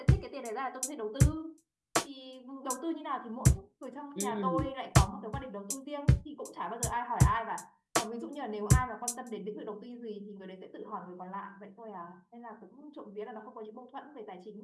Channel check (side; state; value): both; identical; correlation 1.00